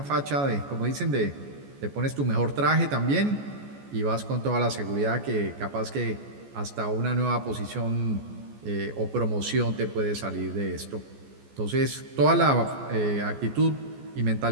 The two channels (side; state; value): left; late; 14 ms